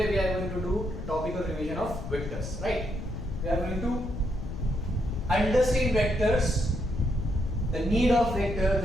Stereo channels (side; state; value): left; noise; rumble, 8 dB below the sound